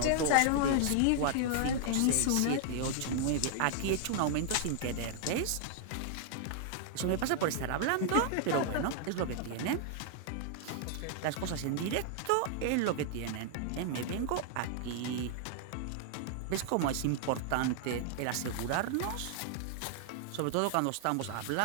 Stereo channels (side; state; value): both; different; correlation -0.01